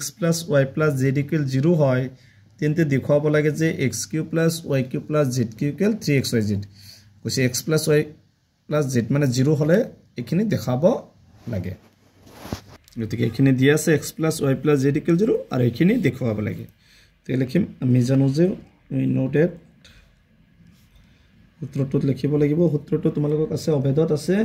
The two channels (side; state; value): both; identical; correlation 1.00